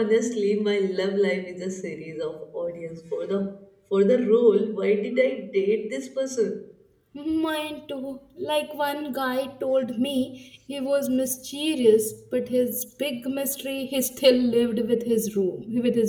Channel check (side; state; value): both; identical; correlation 1.00